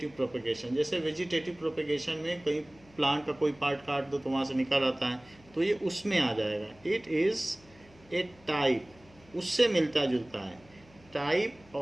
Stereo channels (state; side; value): noise; left; hum, 26 dB below the sound